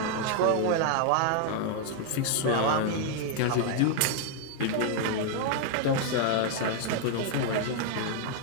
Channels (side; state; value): both; different; correlation 0.00